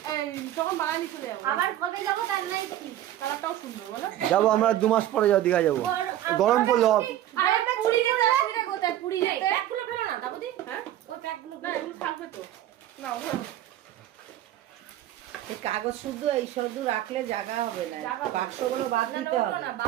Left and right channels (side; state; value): left; quieter; 12.8 dB